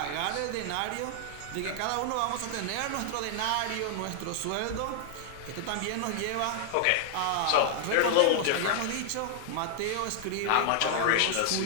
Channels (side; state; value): both; different; correlation 0.00